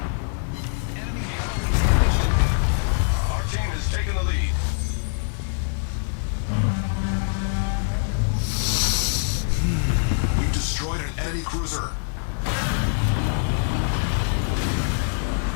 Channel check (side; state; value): right; silent; digital silence